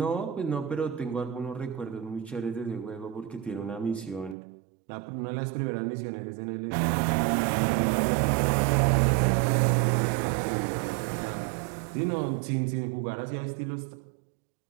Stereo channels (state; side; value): drops out; left; at 4.4 s